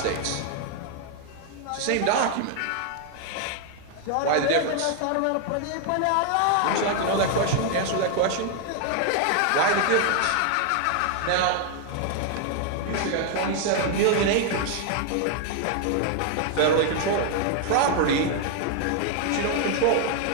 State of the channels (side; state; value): both; different; correlation 0.00